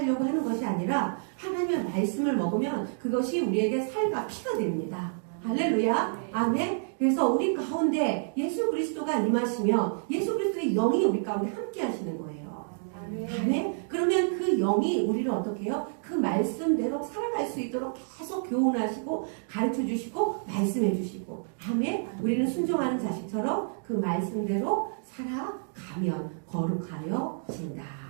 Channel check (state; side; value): silent; left; digital silence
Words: 하는 것이 아니라 하나님의 말씀을 먹으면 그것이 우리에게 살과 피가 됩니다. 할렐루야. 아멘. 그래서 우리 가운데 예수 그리스도가 임하시면 예수 그리스도의 영이 우리 가운데 함께 하시는 거예요. 아멘. 그러면 그 영이 우리를 어떻게 해요? 그 말씀대로 살아갈 수 있도록 계속 교훈하시고 가르쳐 주시고 말씀해 주시고. 아멘. 우리는 순종하는 자식처럼 그 말씀대로 살아가면 거룩하여 진다.